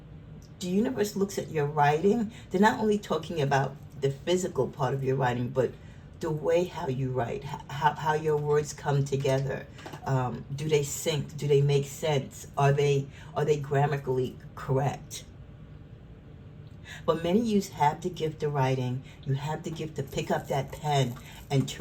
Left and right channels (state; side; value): identical; both; correlation 1.00